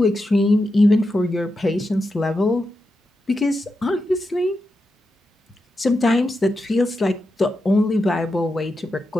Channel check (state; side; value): normal; both; correlation 0.88